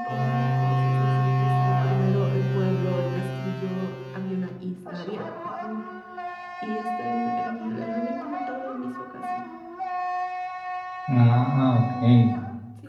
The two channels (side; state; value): both; identical; correlation 1.00